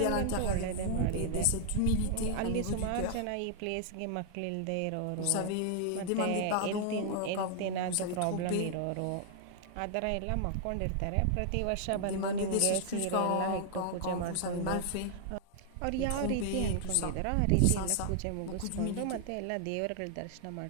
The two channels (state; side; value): different; both; correlation -0.01